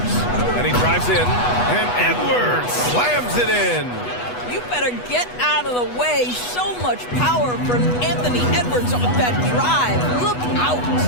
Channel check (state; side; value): late; right; 8.2 ms